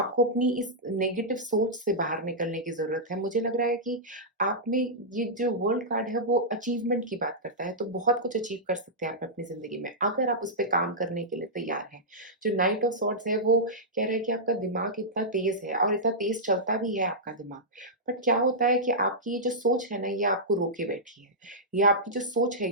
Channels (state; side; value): normal; both; correlation -0.11